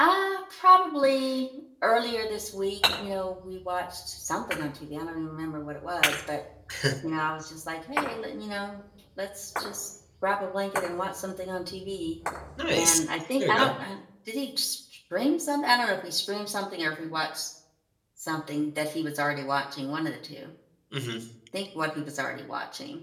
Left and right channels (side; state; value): both; identical; correlation 1.00